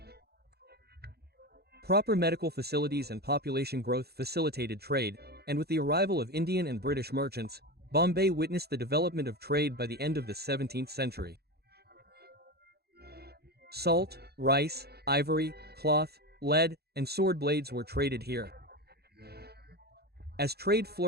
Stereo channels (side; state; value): left; late; 0.47 ms